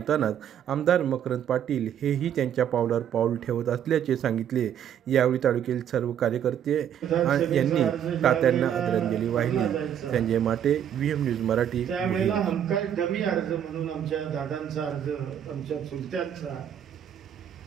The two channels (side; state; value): left; quieter; 9.6 dB